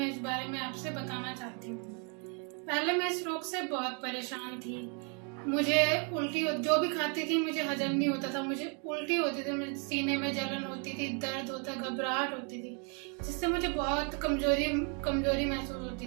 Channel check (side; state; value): left; quieter; 37.6 dB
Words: इस बारे में आपसे बताना चाहती हूँ। पहले मैं इस रोग से बहुत परेशान थी। मुझे उल्टी, जो भी खाती थी मुझे हजम नहीं होता था, मुझे उल्टी होती थी, मुझे सीने में जलन होती थी, दर्द होता, घबराहट होती थी, जिससे मुझे बहुत कमजोरी कमजोरी महसूस होती